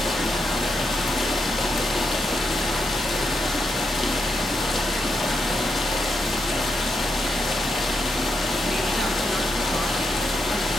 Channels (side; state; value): both; normal; correlation 0.83